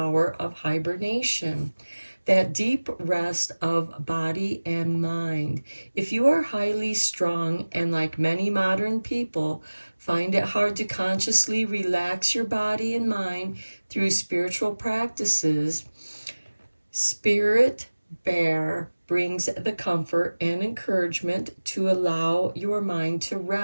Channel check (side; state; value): both; inverted; correlation -1.00